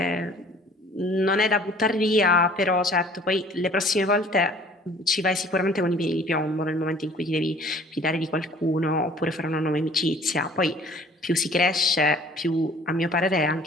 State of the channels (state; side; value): normal; both; correlation 0.52